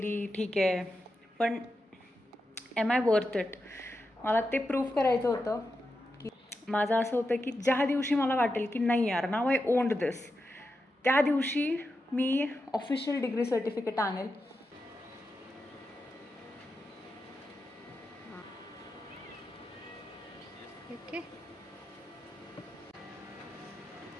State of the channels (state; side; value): normal; both; correlation 0.88